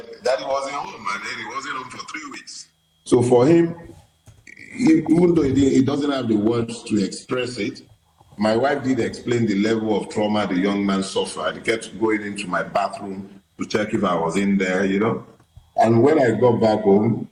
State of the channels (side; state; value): both; identical; correlation 1.00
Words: daddy wasn't home, and then he wasn't home for 3 weeks. So for him, even though he doesn't have the words to express it, my wife did explain the level of trauma the young man suffered. He kept going into my bathroom to check if I was in there, And when I got back home,